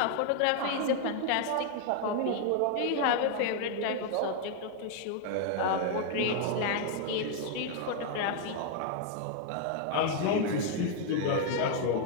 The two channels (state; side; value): different; both; correlation 0.00